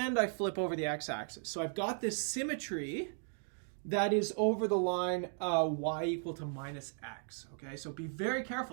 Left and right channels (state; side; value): silent; left; 54 dB below the other